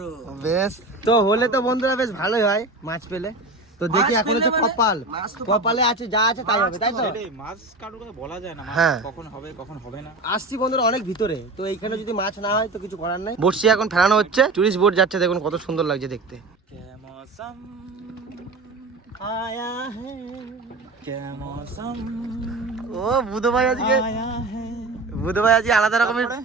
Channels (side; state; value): left; quieter; 3.1 dB